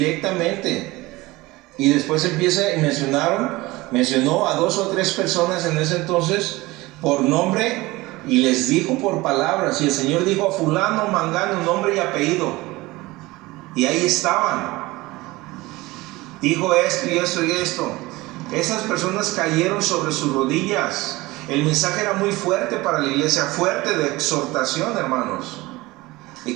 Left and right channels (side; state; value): left; quieter; 20.6 dB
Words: Y después mencionó a 2 o 3 personas en ese entonces por nombre y les dijo por palabras. Y el Señor dijo a fulano, mangano, nombre y apellido. Y ahí estaban. Dijo esto y esto y esto. Esas personas cayeron sobre sus rodillas. El mensaje era muy fuerte para la iglesia, fuerte de exhortación, hermanos. Y